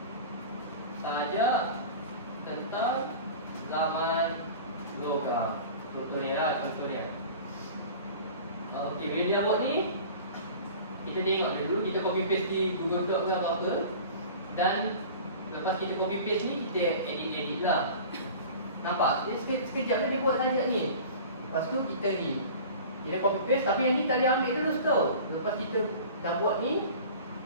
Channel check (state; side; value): inverted; both; correlation -0.40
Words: sajak tentang zaman logam. Contoh dia. Okey, bila dia buat ni, kita tengok dulu, kita copy paste di Google Doc ke apa-apa. Dan lepas kita copy paste ni, kita edit lah. Nampak? Dia sekejap dia buat sajak ni. Lepas tu kita ni, kita copy paste, tapi yang ni tak boleh ambil terus tau. Lepas kita dah buat ni,